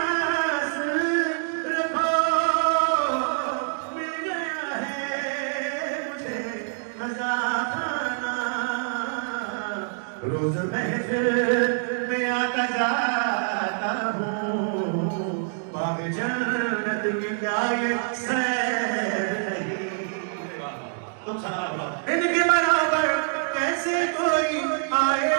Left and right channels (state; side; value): silent; left; digital silence